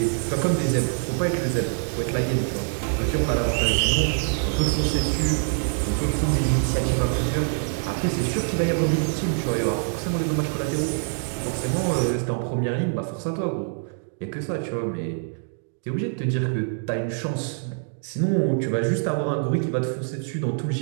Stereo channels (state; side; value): silent; left; 59 dB below the other